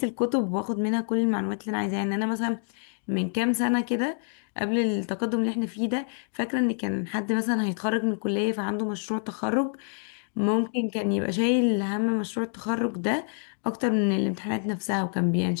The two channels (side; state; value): right; silent; digital silence